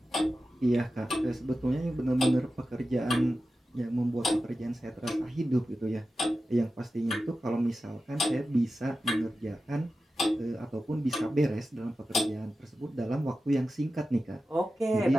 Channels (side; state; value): both; normal; correlation 0.93